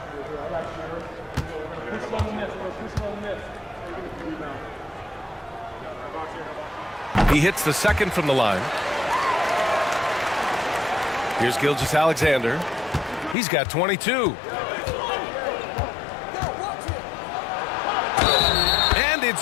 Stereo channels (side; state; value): right; drops out; at 13.4 s